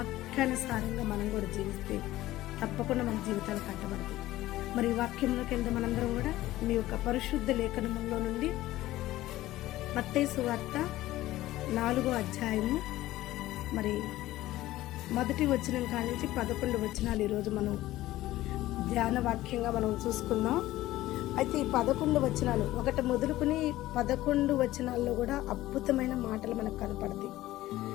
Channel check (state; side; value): quieter; right; 16.0 dB